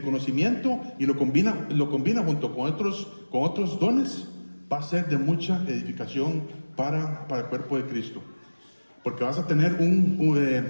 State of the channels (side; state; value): both; inverted; correlation -1.00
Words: y lo combina junto con otros dones, va a ser de mucha edificación para el cuerpo de Cristo. Porque vas a tener